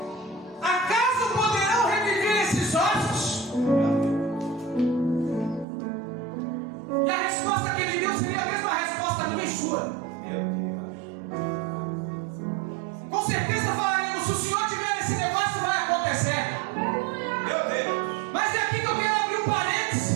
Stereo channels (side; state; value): left; drops out; at 5.7 s